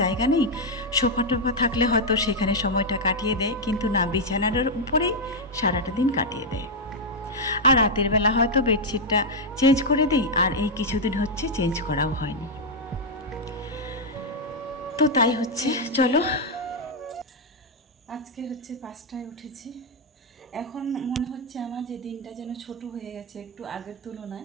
জায়গা নেই। সোফা টোফা থাকলে হয়তো সেখানে সময়টা কাটিয়ে দেয়, কিন্তু না, বিছানার উপরেই সারাটা দিন কাটিয়ে দেয়। আর রাতের বেলা হয়তো বেডশিটটা চেঞ্জ করে দিই, আর এই কিছুদিন হচ্ছে চেঞ্জ করাও হয়নি। তো তাই হচ্ছে। চলো, আজকে হচ্ছে 5টায় উঠেছি। এখন মনে হচ্ছে আমার যে দিনটা যেন ছোট হয়ে গেছে একটু আগের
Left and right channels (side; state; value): both; normal; correlation -0.01